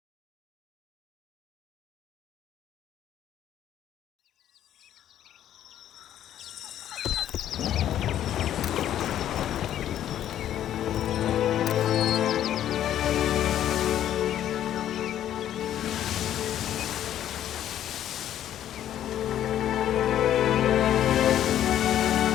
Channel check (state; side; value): quieter; right; 11.2 dB